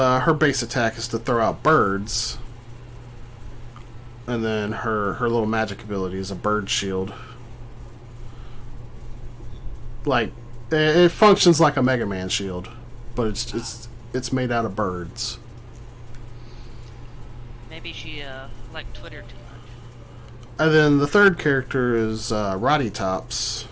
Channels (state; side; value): identical; both; correlation 1.00